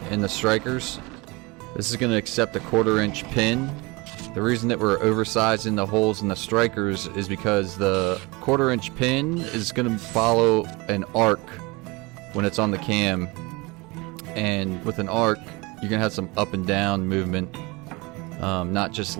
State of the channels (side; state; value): left; quieter; 25.1 dB